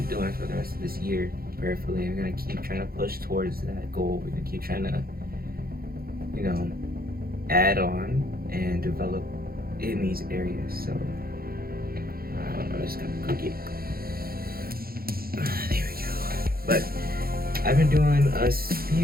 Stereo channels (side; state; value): left; late; 0.44 ms